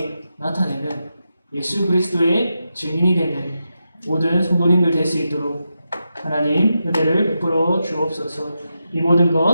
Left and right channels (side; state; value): both; inverted; correlation -0.88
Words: 나타내는 예수 그리스도의 증인이 되는 모든 성도님들 될 수 있도록 하나님 은혜를 베풀어 주옵소서. 이 모든